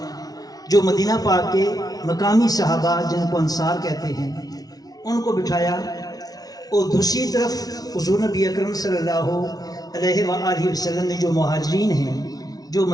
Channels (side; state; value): right; late; 0.18 ms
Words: جو مدینہ پاک کے مقامی صحابہ جن کو انصار کہتے ہیں، ان کو بٹھایا، اور دوسری طرف حضور نبی اکرم صلی اللہ علیہ وآلہ وسلم نے جو مہاجرین ہیں، جو